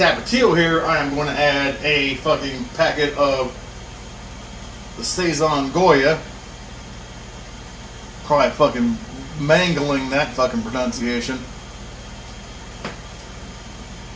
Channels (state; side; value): identical; both; correlation 1.00